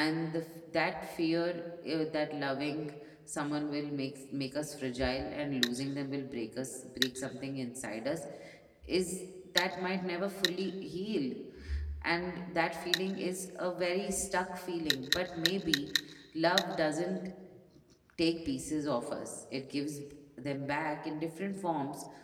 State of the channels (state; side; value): identical; both; correlation 1.00